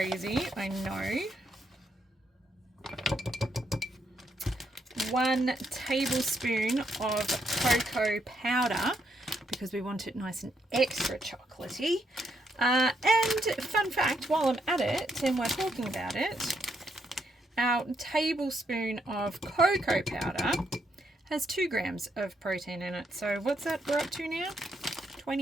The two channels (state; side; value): normal; both; correlation 0.76